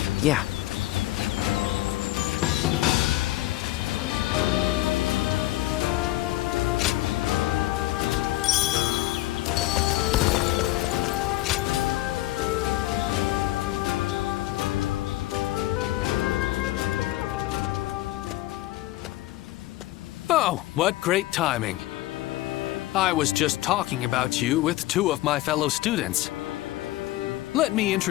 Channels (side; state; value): right; quieter; 16.9 dB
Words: Yeah. Oh, what great timing. I was just talking about you with two of my fellow students. Let me